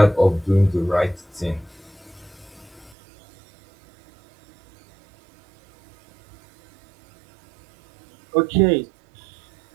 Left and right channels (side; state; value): left; drops out; at 3.0 s